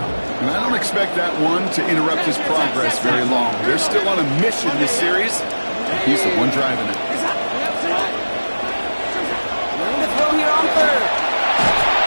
And I don't expect that one to interrupt his progress very long. They're still on a mission this series. He's the one driving it. Willing to throw here on 3rd.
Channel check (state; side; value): inverted; both; correlation -1.00